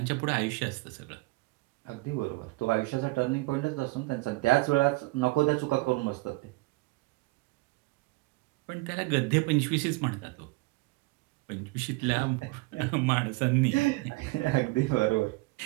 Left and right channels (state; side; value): quieter; left; 23.6 dB